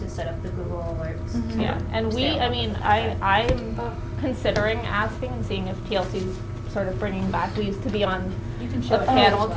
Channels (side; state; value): both; identical; correlation 1.00